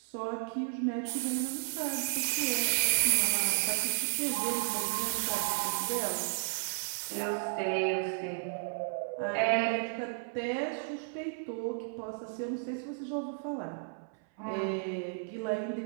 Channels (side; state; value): left; silent; 56 dB below the other